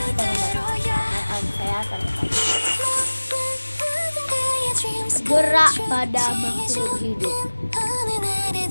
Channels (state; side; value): inverted; both; correlation -1.00